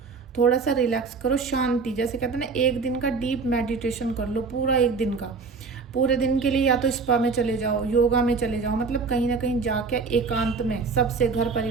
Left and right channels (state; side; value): quieter; left; 4.7 dB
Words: थोड़ा सा रिलैक्स करो, शांति, जैसे कहते हैं ना, एक दिन का डीप मेडिटेशन कर लो, पूरा एक दिन का, पूरे दिन के लिए या तो स्पा में चले जाओ, योगा में चले जाओ, मतलब कहीं ना कहीं जाके एकांत में सबसे, घर